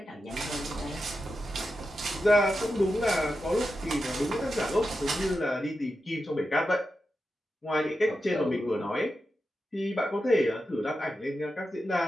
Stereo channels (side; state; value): both; normal; correlation 0.89